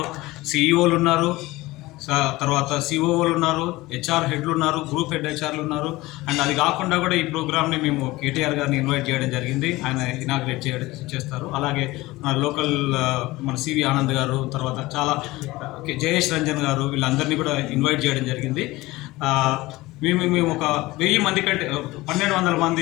CEOలు ఉన్నారు, తర్వాత COOలు ఉన్నారు, HR హెడ్లు ఉన్నారు, గ్రూప్ హెడ్ HRలు ఉన్నారు. అండ్ అది కాకుండా కూడా ఈ ప్రోగ్రామ్ని మేము KTR గారిని ఇన్వైట్ చేయడం జరిగింది. ఆయన ఇనాగ్రేట్ చేస్తారు. అలాగే మన లోకల్ మన CV ఆనంద్ గారు, తర్వాత చాలా జయేష్ రంజన్ గారు, వీళ్ళందరినీ కూడా ఇన్వైట్ చేయడం జరిగింది. మేము ఒక 1000 మంది కంటే 1200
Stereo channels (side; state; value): right; quieter; 19.6 dB